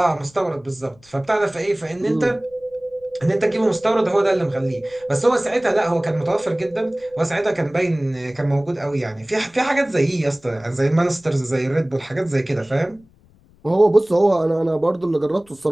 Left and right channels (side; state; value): left; noise; rumble, 29 dB below the sound